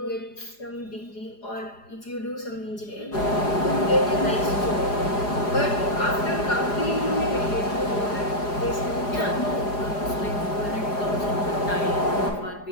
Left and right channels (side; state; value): right; late; 4.9 ms